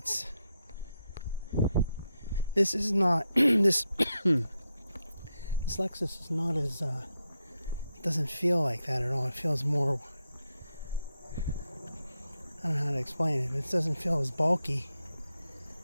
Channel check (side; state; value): both; inverted; correlation -0.84